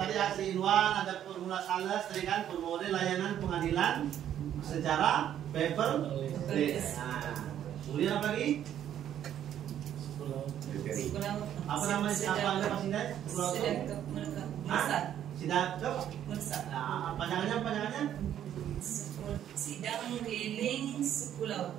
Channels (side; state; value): left; quieter; 10.6 dB